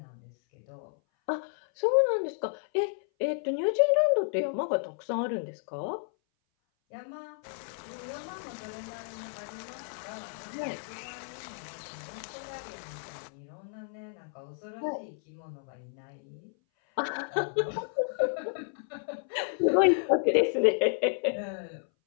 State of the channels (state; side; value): silent; right; 57 dB below the other